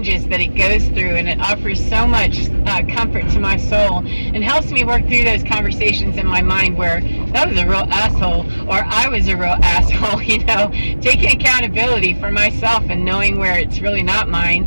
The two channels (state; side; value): inverted; both; correlation -1.00